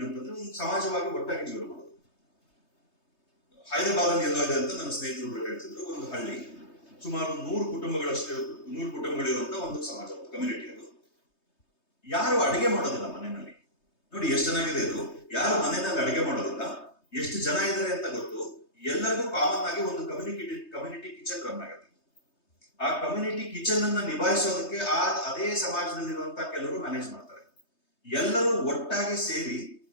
ಅಂತಂದ್ರೆ ಒಂದು ಸಮಾಜವಾಗಿ ಒಟ್ಟಾಗಿ ಜೀವನ ಮಾಡೋದು. ಹೈದರಾಬಾದ್ ಅಲ್ಲಿ ಎಲ್ಲೋ ಇದೆ ಅಂತ ನನ್ನ ಸ್ನೇಹಿತರು ಹೇಳ್ತಿದ್ರು. ಒಂದು ಹಳ್ಳಿ, ಸುಮಾರು 100 ಕುಟುಂಬಗಳಿರುವಂತ ಒಂದು ಸಮಾಜ, ಒಂದು ಕಮ್ಯುನಿಟಿ. ಅದು ಯಾರು ಅಡಿಗೆ ಮಾಡೋದಿಲ್ಲ ಮನೆಯಲ್ಲಿ. ನೋಡಿ ಎಷ್ಟು ಚೆನ್ನಾಗಿದೆ ಇದು. ಯಾರು ಮನೆಯಲ್ಲಿ ಅಡಿಗೆ ಮಾಡೋದಿಲ್ಲ, ಎಷ್ಟು ಜನ ಇದ್ದಾರೆ ಅಂತ ಗೊತ್ತು. ಎಲ್ಲರಿಗೂ ಕಾಮನ್ ಆಗಿ ಒಂದು ಕಮ್ಯುನಿಟಿ ಕಿಚನ್ ರನ್ ಆಗುತ್ತೆ. ಆ ಕಮ್ಯುನಿಟಿ ಕಿಚನ್ ಅನ್ನ ನಿಭಾಯಿಸೋದಕ್ಕೆ ಅದೇ ಸಮಾಜದಲ್ಲಿರುವಂತಹ ಕೆಲವರು ಮ್ಯಾನೇಜ್ ಮಾಡ್ತಾರೆ. ಎಲ್ಲರೂ ಒಟ್ಟಾಗಿ ಸೇರಿ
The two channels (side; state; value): right; late; 3.2 ms